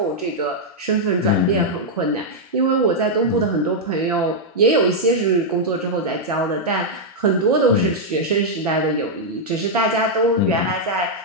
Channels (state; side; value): normal; both; correlation -0.04